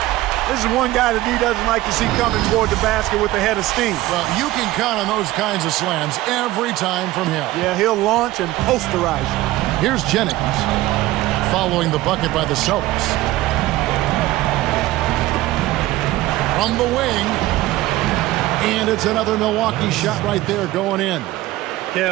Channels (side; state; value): left; quieter; 17.0 dB